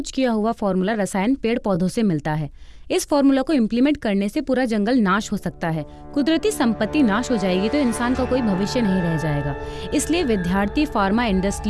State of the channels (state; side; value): identical; both; correlation 1.00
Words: किया हुआ फॉर्मूला रसायन पेड़ पौधों से मिलता है। इस फॉर्मूला को इम्प्लीमेंट करने से पूरा जंगल नाश हो सकता है। कुदरती संपत्ति नाश हो जाएगी तो इंसान का कोई भविष्य नहीं रह जाएगा। इसलिए विद्यार्थी फार्मा